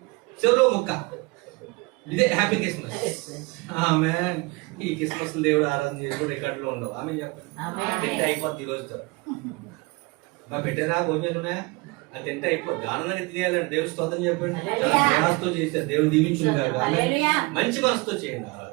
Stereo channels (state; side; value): quieter; left; 26.1 dB